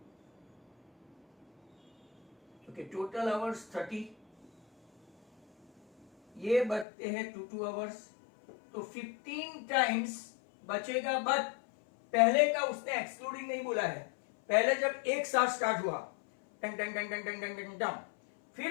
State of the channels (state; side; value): drops out; right; at 6.9 s